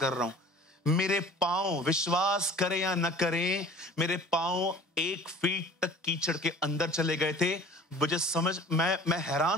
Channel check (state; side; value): normal; both; correlation 0.46